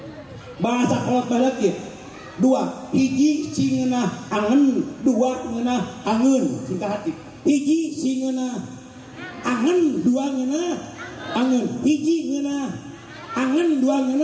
Bahasa kolot balik ya. 2 hiji singeunah angen, 2 ngeunah angeun singkat hati. Hiji singeunah angen, 2 ngeunah angeun. Hiji ngeunah angen, 2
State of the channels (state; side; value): identical; both; correlation 1.00